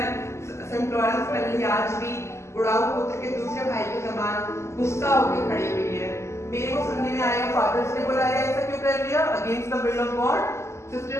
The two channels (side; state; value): right; late; 0.13 ms